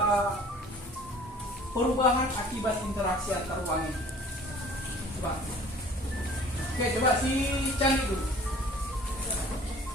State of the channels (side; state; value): both; normal; correlation 0.49